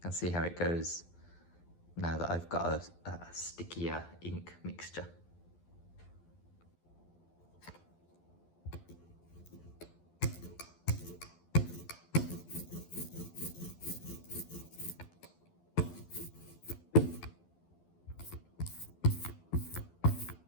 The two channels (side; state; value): right; late; 12 ms